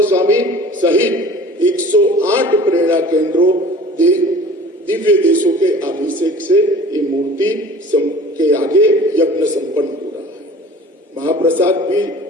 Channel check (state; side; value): normal; both; correlation 0.44